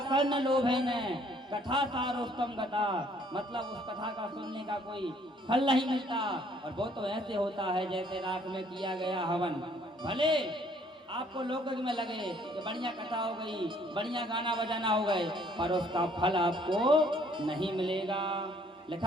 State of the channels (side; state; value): both; normal; correlation 0.62